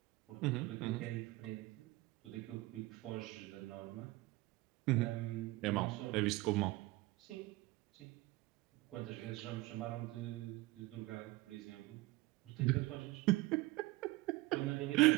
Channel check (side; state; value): left; quieter; 20.3 dB